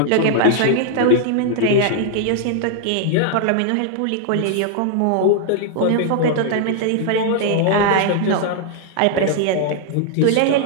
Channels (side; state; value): both; different; correlation 0.00